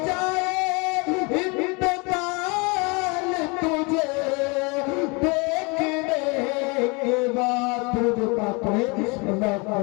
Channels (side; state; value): right; quieter; 29.6 dB